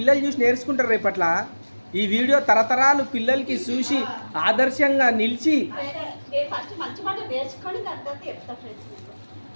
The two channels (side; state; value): both; inverted; correlation -1.00